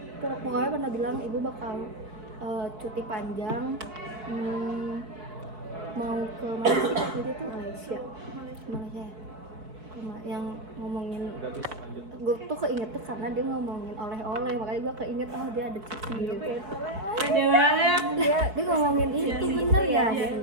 pokoknya pernah bilang ibu bakal cuti panjang, mau ke Malaysia gitu tuh. Malaysia yang ngomongin, gue tuh keinget tuh karena dia ngomongin oleh-oleh, makanya gue keinget dia ada cuti gitu. Ada banget. Dia ngomongin itu bener ya,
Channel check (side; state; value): left; late; 4.6 ms